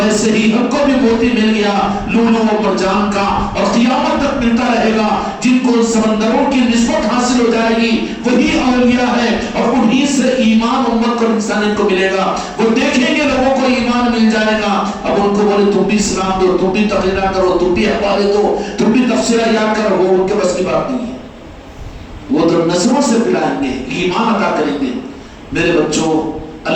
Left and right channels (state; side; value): identical; both; correlation 1.00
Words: ہی ہم کو بھی موتی مل گیا لولو و مرجان کا، اور قیامت تک ملتا رہے گا۔ جن کو سمندروں کی نسبت حاصل ہو جائے گی وہی اولیاء ہے، اور انہی سے ایمان امت کو انسانیت کو ملے گا۔ وہ دیکھیں گے لوگوں کو ایمان مل جائے گا، اب ان کو بولے تم بھی اسلام دو، تم بھی تقریرہ کرو، تم بھی حوالے دو، تم بھی تفسیرہ یاد کرو، وہ ان کے بس کی بات نہیں ہے۔ وہ تو نظروں سے پلائیں گے، ایمان عطا کریں گے۔ میرے بچوں،